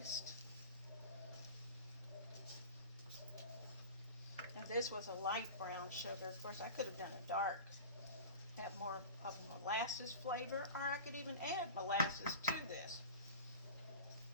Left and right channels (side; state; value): both; inverted; correlation -0.33